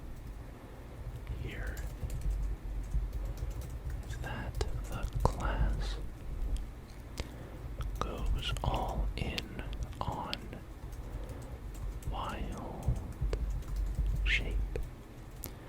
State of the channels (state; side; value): identical; both; correlation 1.00